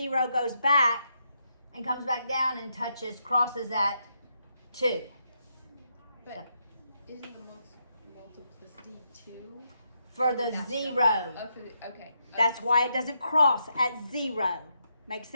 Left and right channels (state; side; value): inverted; both; correlation -0.80